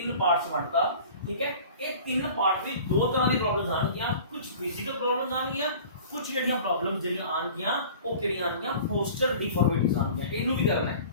ਪਾਰਟਸ ਵੰਡਤਾ, ਠੀਕ ਹੈ। ਇਹ ਤਿੰਨ ਪਾਰਟ ਵਿੱਚ ਦੋ ਤਰ੍ਹਾਂ ਦੀ ਪ੍ਰੋਬਲਮਸ ਆਣਗੀਆਂ, ਕੁਝ ਫਿਜ਼ੀਕਲ ਪ੍ਰੋਬਲਮਸ ਆਣਗੀਆਂ, ਕੁਝ ਜਿਹੜੀਆਂ ਪ੍ਰੋਬਲਮਸ ਜਿਹੜੀਆਂ ਆਣਗੀਆਂ ਉਹ ਕਿਹੜੀਆਂ ਆਣਗੀਆਂ, ਪੋਸਚਰ डिफॉर्मिटीज ਆਣਗੀਆਂ। ਇਹਨੂੰ ਵੀ ਕਰਨਾ ਹੈ,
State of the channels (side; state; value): both; inverted; correlation -0.43